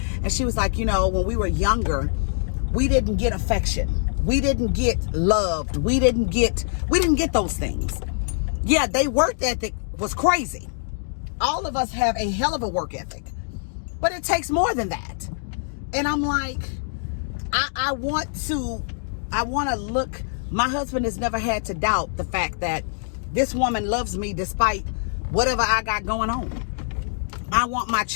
and she was like, you know, when we were younger, we didn't get affection. We didn't get loved. We didn't get those things. Yeah, they work ethic was crazy. All of us have a hell of a work ethic. But it takes more than that. And I'm like, I want to look, my husband has never had to doubt the fact that this woman loves me despite whatever I got going on. I want my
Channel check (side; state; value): right; silent; digital silence